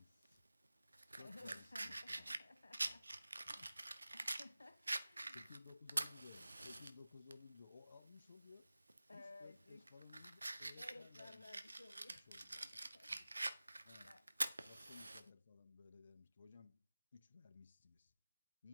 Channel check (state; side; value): inverted; both; correlation -0.97